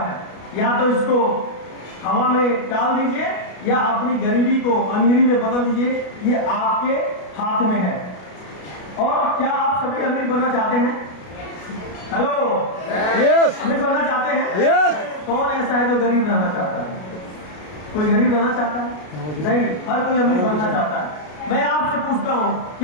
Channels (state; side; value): late; right; 33 ms